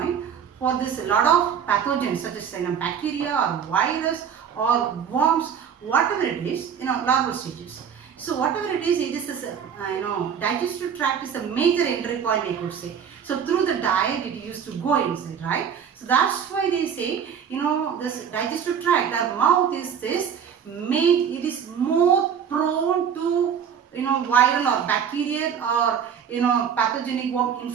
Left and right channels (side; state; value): left; quieter; 7.8 dB